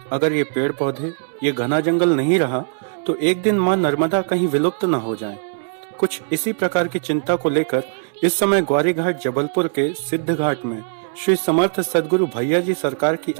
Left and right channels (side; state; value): left; silent; 66 dB below the other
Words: अगर ये पेड़ पौधे, ये घना जंगल नहीं रहा तो एक दिन माँ नर्मदा कहीं विलुप्त न हो जाए। कुछ इसी प्रकार की चिंता को लेकर इस समय ग्वारी घाट जबलपुर के सिद्ध घाट में श्री समर्थ सदगुरु भैया जी सरकार की